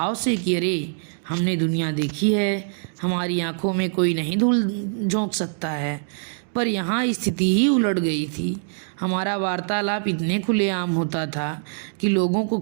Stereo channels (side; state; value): left; silent; digital silence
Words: से कि अरे हमने दुनिया देखी है, हमारी आंखों में कोई नहीं धूल झोंक सकता है। पर यहाँ स्थिति ही उलट गई थी। हमारा वार्तालाप इतने खुलेआम होता था कि लोगों को